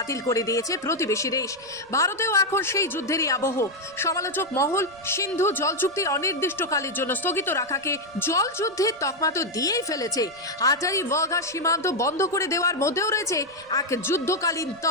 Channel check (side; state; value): right; noise; rumble, 29 dB below the sound